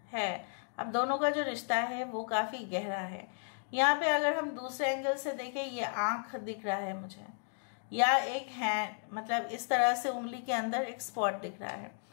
है, आप दोनों का जो रिश्ता है वो काफ़ी गहरा है। यहाँ पे अगर हम दूसरे एंगल से देखें, ये आँख दिख रहा है मुझे, या एक हैंड, मतलब इस तरह से उंगली के अंदर एक स्पॉट दिख रहा है,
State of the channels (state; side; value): silent; right; 55 dB below the other